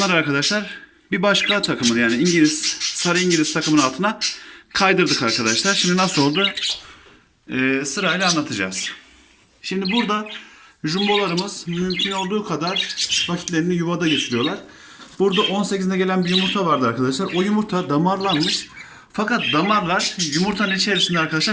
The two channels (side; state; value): both; identical; correlation 1.00